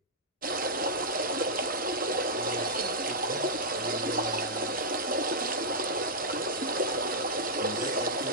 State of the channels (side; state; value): both; normal; correlation -0.09